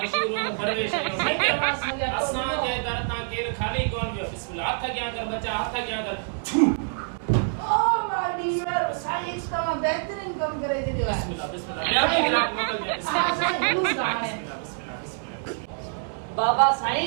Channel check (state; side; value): silent; left; 61 dB below the other